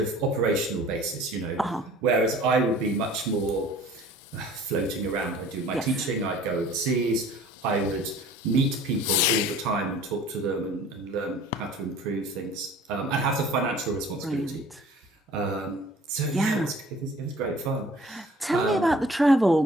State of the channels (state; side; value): normal; both; correlation 0.49